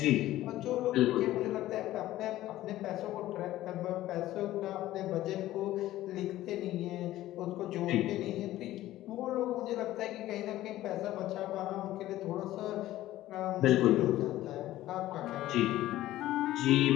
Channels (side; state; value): right; quieter; 15.0 dB